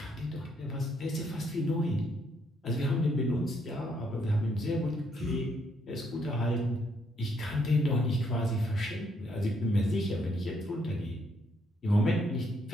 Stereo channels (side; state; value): both; normal; correlation 0.72